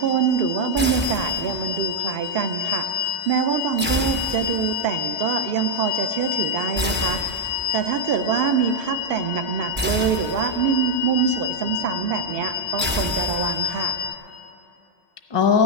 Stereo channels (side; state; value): both; normal; correlation 0.00